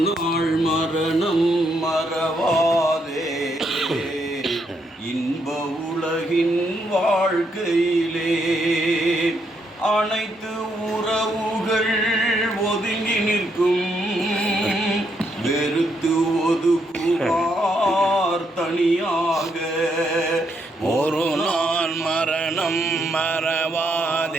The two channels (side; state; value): both; normal; correlation 0.76